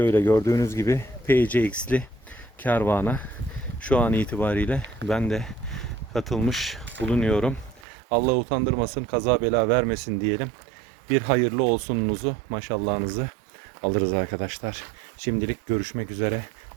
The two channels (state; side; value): drops out; left; at 7.9 s